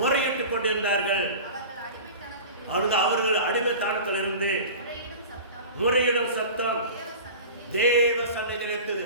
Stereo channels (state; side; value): inverted; both; correlation -0.36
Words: கொண்டிருந்தார்கள். அவர்கள் அடிமைத்தனத்தில் இருந்து முறையிடும் சத்தம் தேவ சன்னதியில் எட்டுது.